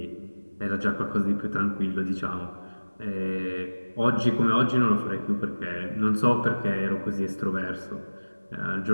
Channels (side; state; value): both; inverted; correlation -1.00